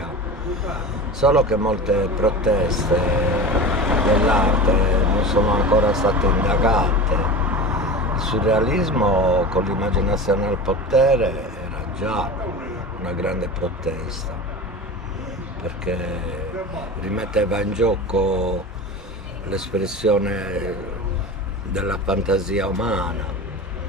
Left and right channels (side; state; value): both; normal; correlation 0.31